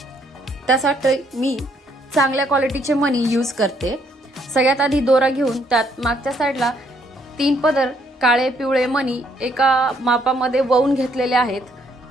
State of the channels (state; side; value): normal; both; correlation 0.69